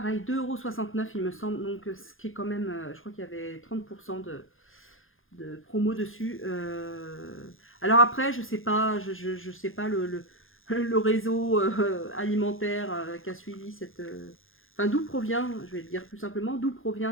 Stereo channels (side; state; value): right; late; 0.59 ms